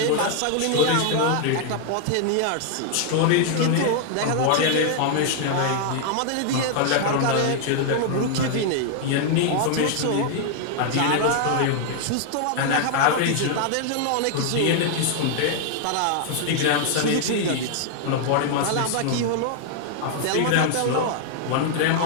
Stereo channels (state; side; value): different; both; correlation 0.00